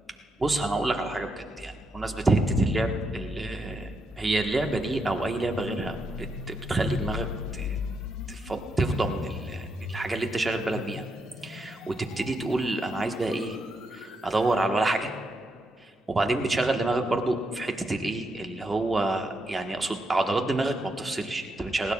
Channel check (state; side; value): normal; both; correlation 0.81